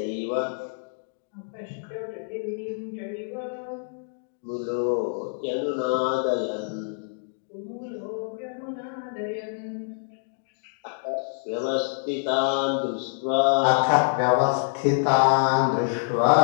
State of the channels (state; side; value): silent; right; 60 dB below the other